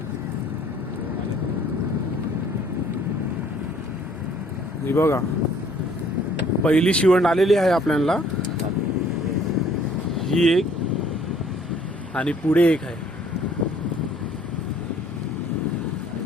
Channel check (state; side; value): normal; both; correlation 0.59